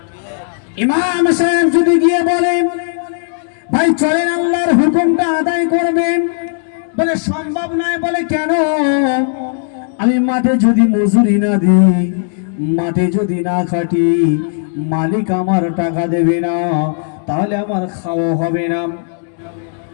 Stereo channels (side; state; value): right; silent; digital silence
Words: ইমাম সাহেব যদি গিয়ে বলে ভাই চলেন আল্লাহর হুকুমটা আদায় করবেন, বলে সম্ভব নয়, বলে কেন? আমি মাঠে যদি মজুরি না দিই, মাঠে যদি না খাটি, মালিক আমার টাকা দেবে না, তাহলে আমার খাওয়া হবে না।